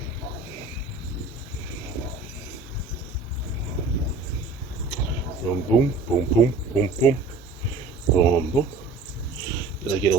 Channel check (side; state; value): left; quieter; 3.8 dB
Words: Boom, boom, boom, boom, boom, boom, boom, boom. Really get a